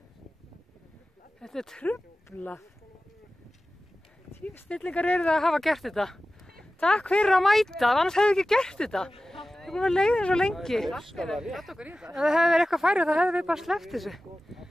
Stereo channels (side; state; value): both; normal; correlation 0.95